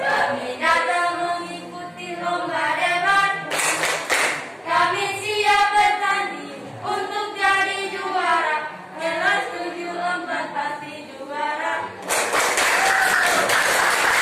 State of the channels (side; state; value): both; identical; correlation 1.00